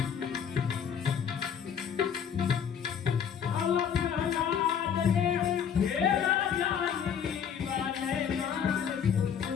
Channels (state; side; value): quieter; right; 7.8 dB